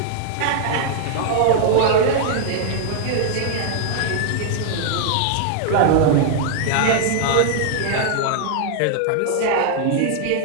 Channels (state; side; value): different; both; correlation -0.01